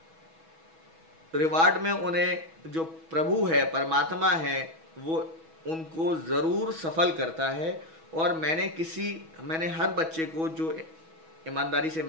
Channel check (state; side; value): late; left; 6.2 ms